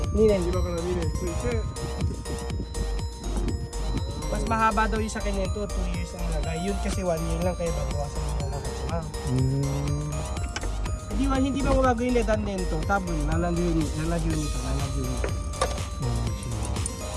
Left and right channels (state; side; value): identical; both; correlation 1.00